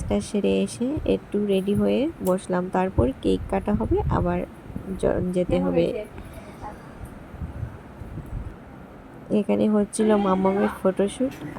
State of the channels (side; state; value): both; identical; correlation 1.00